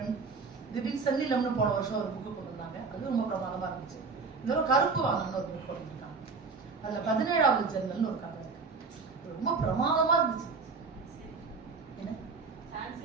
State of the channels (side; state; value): left; quieter; 4.6 dB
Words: திடீர்னு சென்னிலம்னு போன வருஷம் ஒரு புக்கு கொண்டு வந்தாங்க. அது ரொம்ப பிரமாதமா இருந்துச்சு. இன்னொரு கருப்பு வாங்கன்னு ஒரு புக் கொண்டு இருக்காங்க. அதுல 17வது ஜன்னல்னு ஒரு கதை இருக்கு. ரொம்ப பிரமாதமா இருந்துச்சு. என்ன